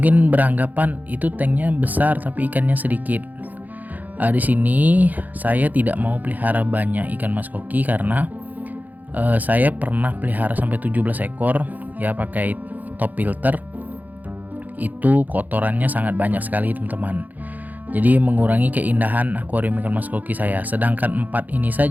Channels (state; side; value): late; left; 0.082 ms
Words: beranggapan itu tanknya besar tapi ikannya sedikit. Di sini saya tidak mau pelihara banyak ikan mas koki karena saya pernah pelihara sampai 17 ekor ya pakai top filter. Itu kotorannya sangat banyak sekali teman-teman. Jadi mengurangi keindahan akuarium ikan mas koki saya. Sedangkan 4 ini